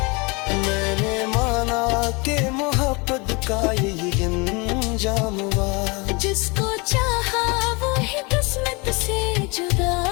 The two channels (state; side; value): quieter; right; 28.7 dB